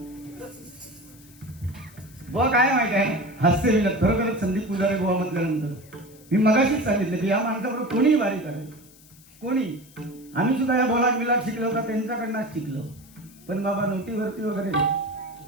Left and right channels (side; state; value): left; noise; hiss, 25 dB below the sound